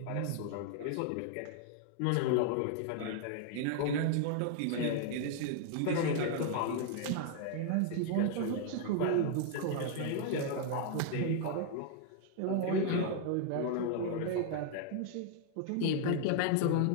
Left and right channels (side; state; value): both; different; correlation 0.00